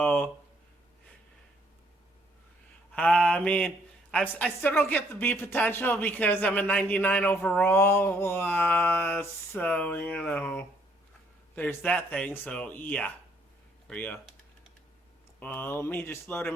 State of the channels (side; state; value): both; normal; correlation 0.67